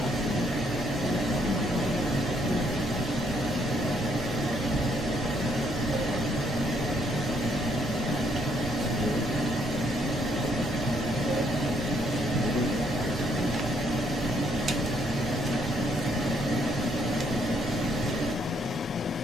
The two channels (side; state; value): both; normal; correlation 0.70